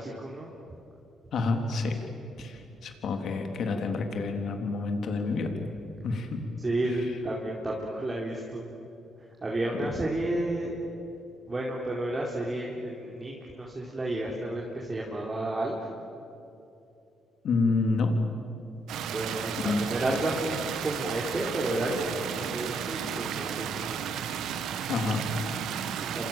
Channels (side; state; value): both; normal; correlation 0.76